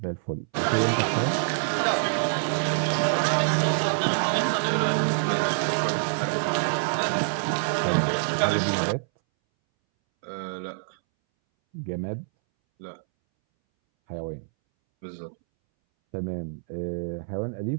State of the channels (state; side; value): silent; left; 61 dB below the other